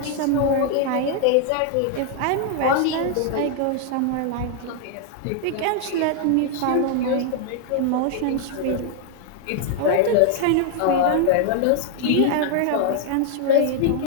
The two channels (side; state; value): both; different; correlation 0.00